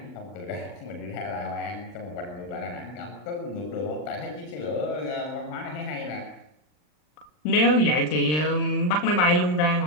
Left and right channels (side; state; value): right; late; 39 ms